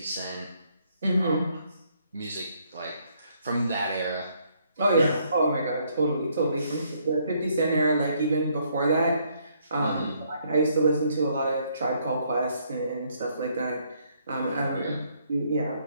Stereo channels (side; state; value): both; inverted; correlation -0.70